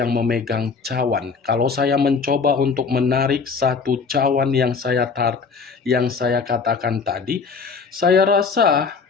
memegang cawan. Kalau saya mencoba untuk menarik satu cawan yang saya katakan tadi, saya rasa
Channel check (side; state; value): right; quieter; 5.1 dB